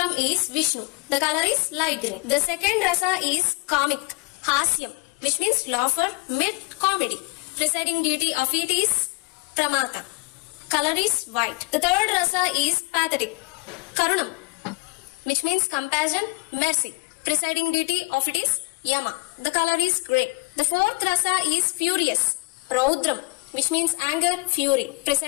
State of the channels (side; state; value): right; quieter; 28.8 dB